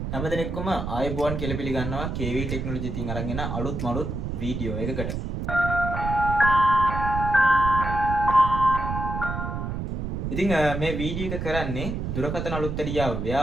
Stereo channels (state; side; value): noise; right; rumble, 4 dB below the sound